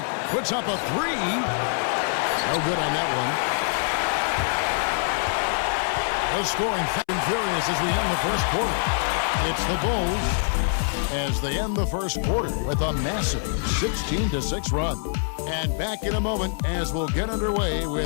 Puts up a 3. No good on that one. The scoring fast and furious as we end the first quarter. It's the Bulls as they end the first quarter with a massive 16-6 run. And back in a moment as we'll get underway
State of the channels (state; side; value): silent; right; 62 dB below the other